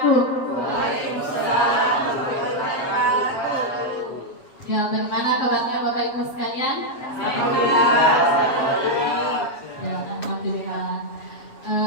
Ya, bagaimana kabarnya Bapak Ibu sekalian? Ya, alhamdulillah.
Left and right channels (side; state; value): right; late; 7.8 ms